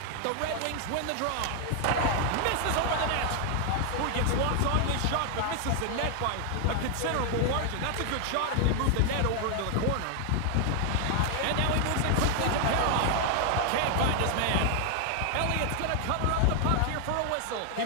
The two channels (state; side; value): different; both; correlation 0.00